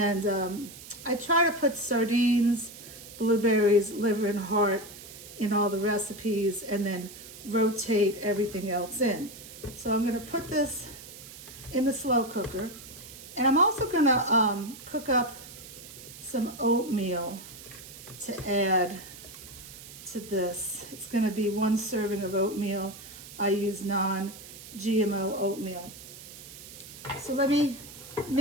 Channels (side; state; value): right; noise; hiss, 15 dB below the sound